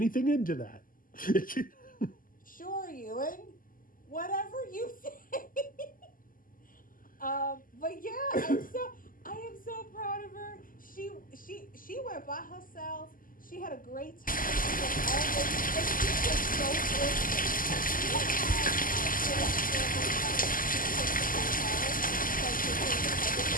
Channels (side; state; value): right; late; 0.41 ms